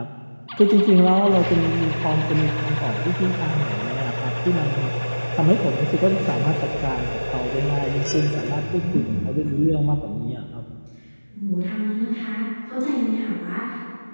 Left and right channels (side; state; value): both; inverted; correlation -1.00